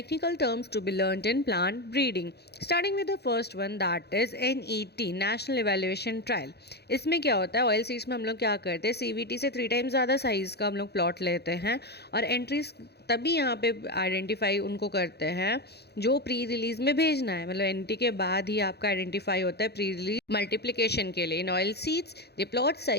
terms to be learned in plant breeding. Starting with the first one, that is NET, National Evaluation Trial. इसमें क्या होता है, oil seeds में हम लोग क्या करते हैं, CVT से 3 टाइम्स ज़्यादा साइज़ का हम लोग प्लॉट लेते हैं और एंट्रीज तभी यहाँ पे आइडेंटिफाई उनको करते हैं जो प्री रिलीज में भेजना है, मतलब एनटी के बाद ही आपका आइडेंटिफाई होता है प्री रिलीज मल्टीप्लिकेशन के लिए. In oil seeds the plot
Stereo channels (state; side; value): late; right; 0.48 ms